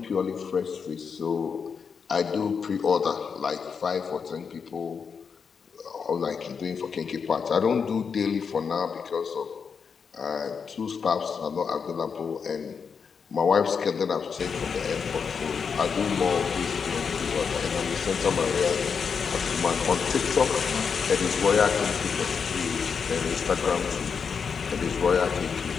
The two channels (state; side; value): quieter; right; 6.1 dB